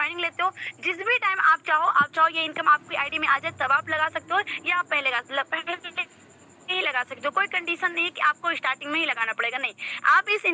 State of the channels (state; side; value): identical; both; correlation 1.00